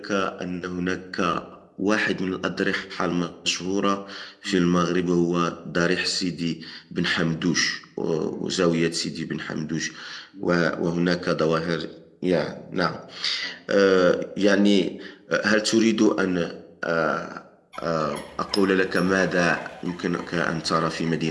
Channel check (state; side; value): identical; both; correlation 1.00